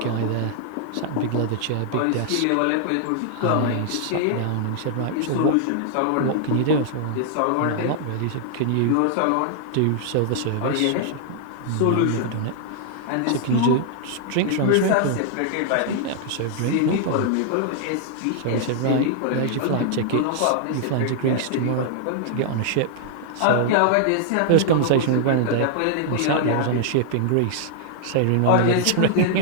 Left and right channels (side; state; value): both; different; correlation -0.01